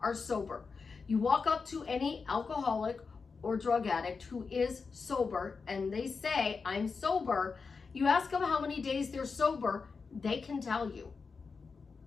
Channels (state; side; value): quieter; right; 4.9 dB